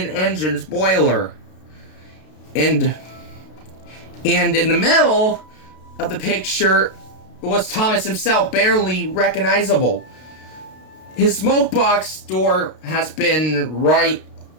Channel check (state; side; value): late; right; 32 ms